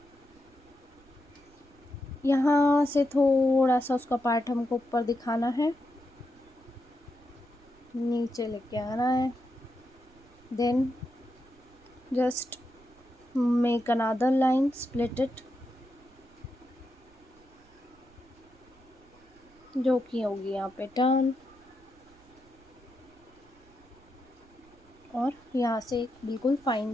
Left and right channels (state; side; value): noise; right; rumble, 28 dB below the sound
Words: यहाँ से थोड़ा सा उसका पार्ट हमको ऊपर दिखाना है, नीचे लेके आना है। Then just make another line, split it, जो कि होगी यहाँ पे टर्न। और यहाँ से एक बिल्कुल फाइन